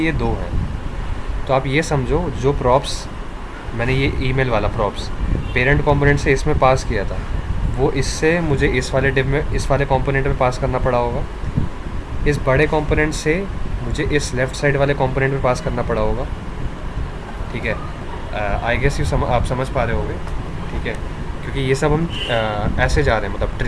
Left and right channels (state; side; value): identical; both; correlation 1.00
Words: ये 2 हैं। तो आप ये समझो, जो प्रॉप्स मैंने ये ईमेल वाला प्रॉप्स पेरेंट कंपोनेंट से इसमें पास किया था, वो इससे मुझे इस वाले डिव में, इस वाले कंपोनेंट में पास करना पड़ा होगा। इस बड़े कंपोनेंट से मुझे इस लेफ़्ट साइड वाले कंपोनेंट में पास करना पड़ा होगा, ठीक है। आई गेस आप समझ पा रहे होगे, ठीक है, क्योंकि ये सब हम ऐसे जा रहे हैं, मतलब